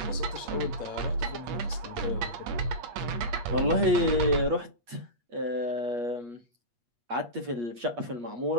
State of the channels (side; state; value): left; late; 8.4 ms